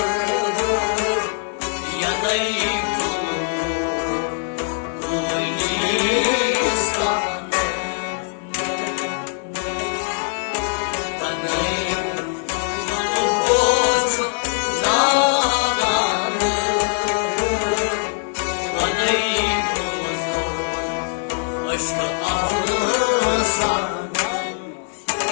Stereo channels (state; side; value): silent; right; 64 dB below the other